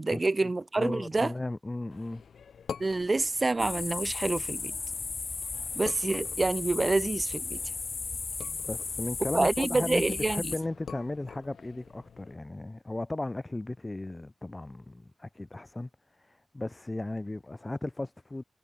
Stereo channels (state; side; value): normal; both; correlation 0.96